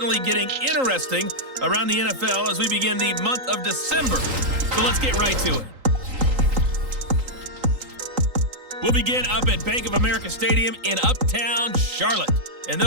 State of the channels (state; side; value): late; left; 3.8 ms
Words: getting interesting around the NFL as we begin the month of December. So let's get right to it. We'll begin up at Bank of America Stadium in Uptown Charlotte. And